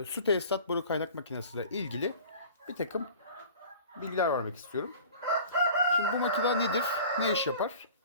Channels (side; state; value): both; inverted; correlation -0.43